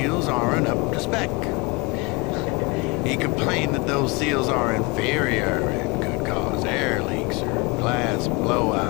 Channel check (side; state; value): right; quieter; 26.5 dB